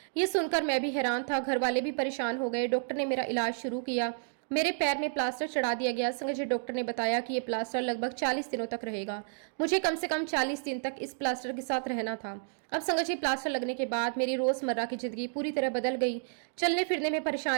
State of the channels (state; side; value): silent; left; digital silence